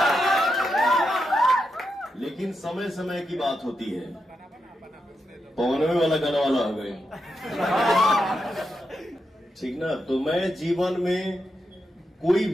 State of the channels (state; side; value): normal; both; correlation 0.85